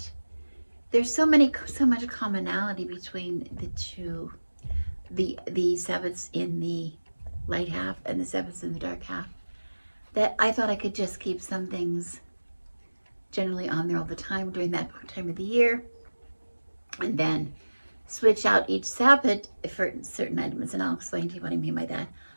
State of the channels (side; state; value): both; inverted; correlation -1.00